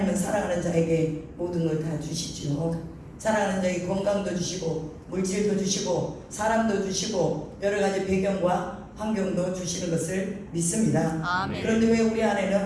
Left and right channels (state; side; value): identical; both; correlation 1.00